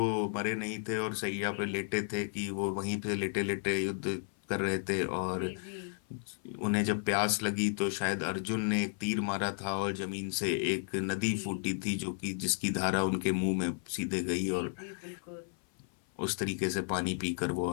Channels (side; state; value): right; silent; 56 dB below the other